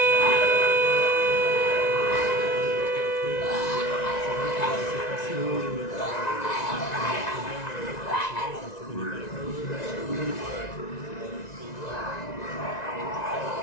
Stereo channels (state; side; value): late; right; 1.9 ms